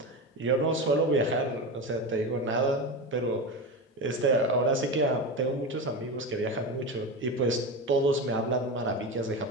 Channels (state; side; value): normal; both; correlation 0.21